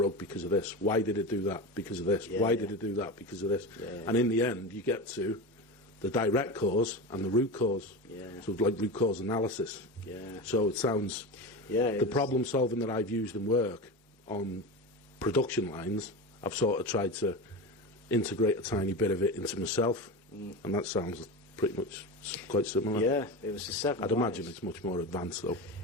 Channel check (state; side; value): normal; both; correlation 0.24